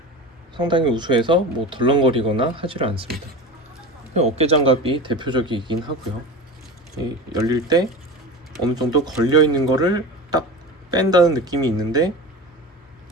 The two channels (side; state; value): both; normal; correlation 0.30